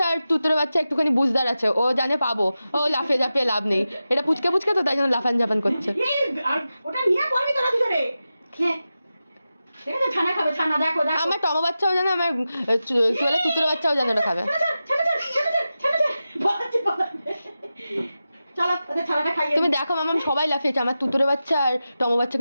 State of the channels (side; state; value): both; inverted; correlation -0.93